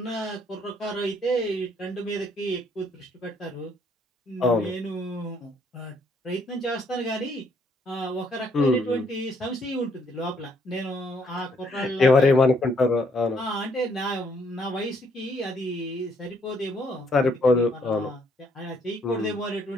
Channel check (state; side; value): normal; both; correlation 0.68